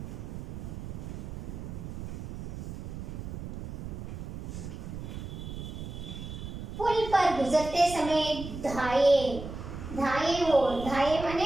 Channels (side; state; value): right; noise; rumble, 8 dB below the sound